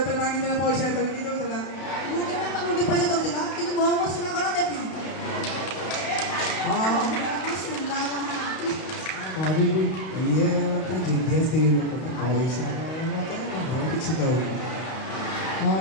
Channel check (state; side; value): late; right; 32 ms